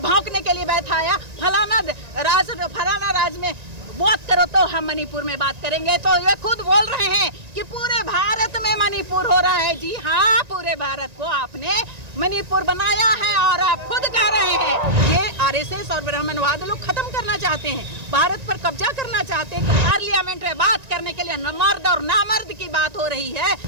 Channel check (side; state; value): left; late; 1.9 ms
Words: के लिए बैठाया, फलाना राज में बात करो तो हम मणिपुर में बात करेंगे। तो ये खुद बोल रहे हैं कि पूरे भारत में मणिपुर हो रहा है। जी हाँ, पूरे भारत को आपने मणिपुर बनाया है और आप खुद कह रहे हैं। ये आरएसएस और ब्राह्मणवाद लोग खत्म करना चाहते हैं, भारत पर कब्जा करना चाहते हैं। पार्लियामेंट में बात करने के लिए मर्द और नामर्द की बात हो रही है।